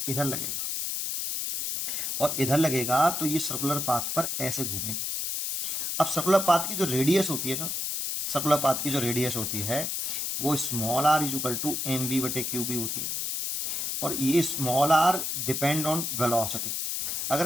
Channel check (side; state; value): left; noise; hiss, 2 dB below the sound